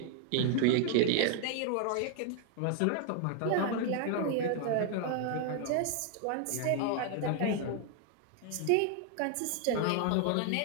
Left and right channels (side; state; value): both; different; correlation 0.00